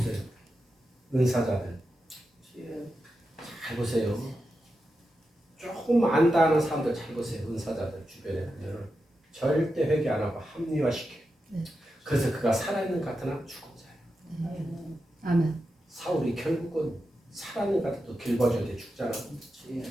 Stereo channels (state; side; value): normal; both; correlation 0.89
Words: 은사자들. 잘 보세요. 조금 안다는 사람들 잘 보세요. 은사자들 주변에 보면 절대 회개 안 하고 합리화시켜요. 그래서 그가 살아있는 것 같으나 죽은 자예요. 아멘. 사울이 결국은 살아있는 것 같아도 길봐줘야 돼. 죽잖아.